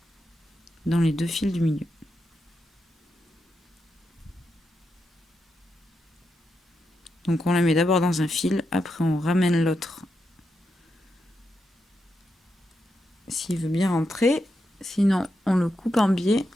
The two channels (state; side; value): normal; both; correlation 0.85